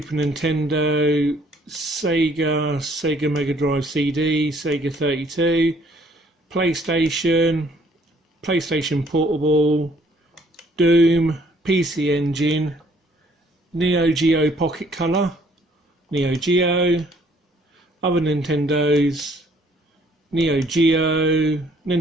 Nintendo, Sega Mega Drive CD, Sega 32, PlayStation Portable, Doom, PC Engine, Neo Geo Pocket Color, Neo Geo, other Nintendos, Neo Geo,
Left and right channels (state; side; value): normal; both; correlation 0.62